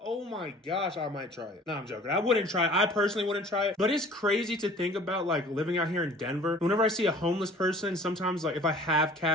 Oh my gosh, I might try it. No, I'm joking. I wouldn't try it. I personally wouldn't try it. But it's crazy to think about, like, living out here in Denver. Whenever I see a homeless person, sometimes, like, if I have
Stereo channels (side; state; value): both; normal; correlation 0.48